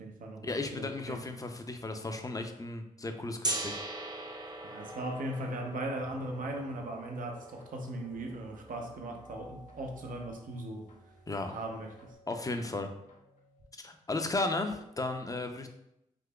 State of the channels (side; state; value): both; normal; correlation 0.46